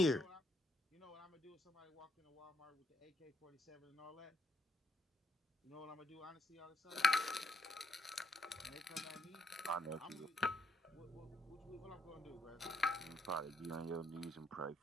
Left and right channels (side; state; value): both; normal; correlation 0.75